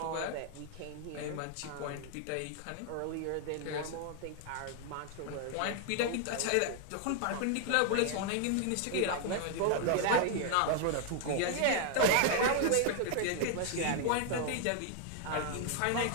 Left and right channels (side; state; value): both; different; correlation 0.00